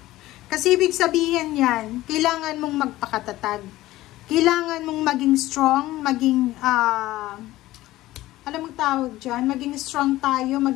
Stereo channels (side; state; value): right; quieter; 16.6 dB